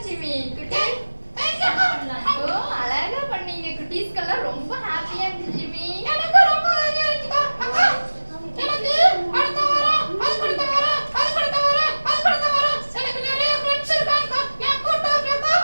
Jimmy. குட்டி ஓ அழகா பண்ணீங்க. குட்டீஸ்க்கெல்லாம் ரொம்ப ஹாப்பியா இருந்துச்சு ஜிம்மி. எனக்கு ரொம்ப ஹாப்பியா இருந்துச்சுப்பா. அக்கா எனக்கு அடுத்த வாரம் அது அடுத்த வாரம் எனக்கு நிறைய ஃப்ரெண்ட்ஸ் இருக்காங்க. நான் கூட்டி வரேன்க்கா.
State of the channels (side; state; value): both; inverted; correlation -1.00